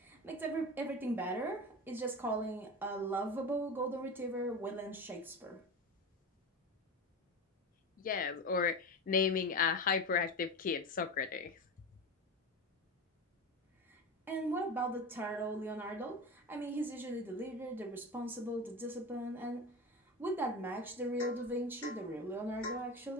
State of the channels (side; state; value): both; normal; correlation 0.25